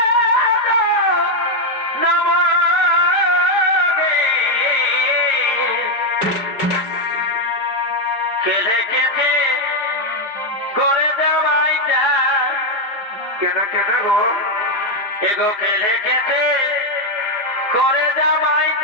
খেলে খেতে করে দেওয়াই যায়। কেন কেন গো? এগো খেলে খেতে করে দেওয়াই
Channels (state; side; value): late; right; 4.9 ms